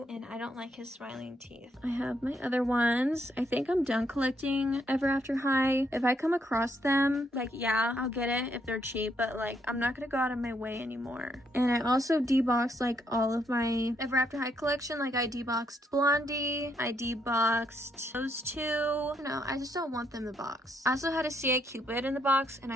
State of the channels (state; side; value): normal; both; correlation 0.75